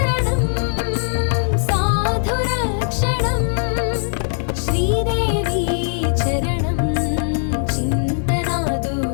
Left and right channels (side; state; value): right; silent; digital silence